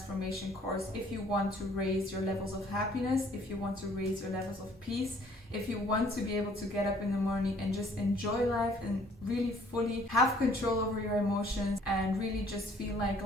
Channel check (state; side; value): normal; both; correlation 0.59